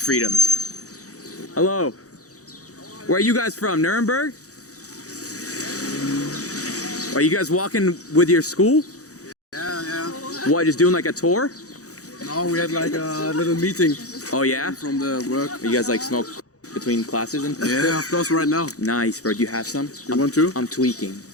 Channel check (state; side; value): late; right; 0.66 ms